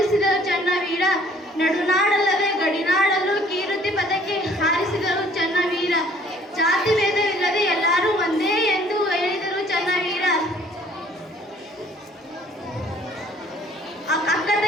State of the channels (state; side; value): normal; both; correlation 0.57